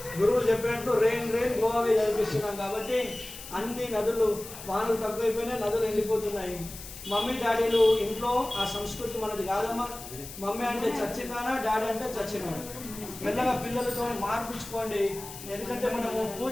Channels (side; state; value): left; noise; hiss, 13 dB below the sound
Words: గురువులు చెప్పినట్టు రెయిన్ గోవావే చదివిస్తున్నాం. కాబట్టి అన్ని నదులు వానలు తక్కువైపోయినాయి, నదులు ఎండిపోతున్నాయి. మమ్మీ డాడీలు ఇంట్లో ఆ సంస్కృతి మనది కాదమ్మా. మమ్మీ అంటే చచ్చినానా, డాడీ అంటే చచ్చినానా. మెల్లగా పిల్లలతో మార్పించుకోండి. ఎందుకంటే మనము